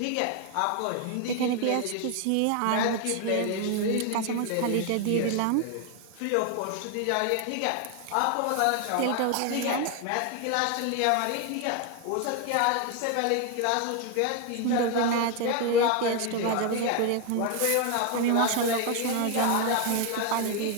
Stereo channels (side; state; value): both; different; correlation 0.01